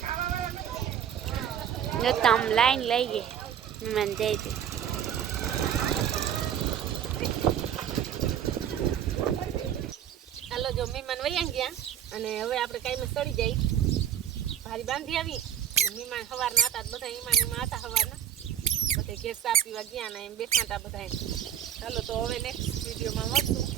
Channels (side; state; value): left; quieter; 9.5 dB